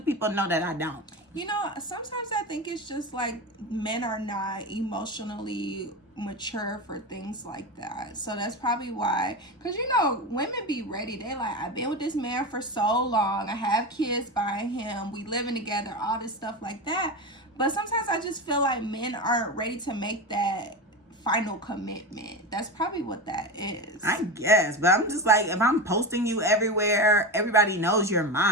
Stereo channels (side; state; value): both; normal; correlation 0.21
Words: know that I don't? You know, sometimes I think it's just like men are not emotionally mature for things like that. So that's probably why. Because, you know, women be ready. They like, I've been with this man for so long. I have kids by him. We living together. All this stuff like that. But sometimes I just feel like men aren't ready to make that final commitment. That's probably what that is. I guess. But I'm just like, if I'm posting you everywhere, everybody knows you're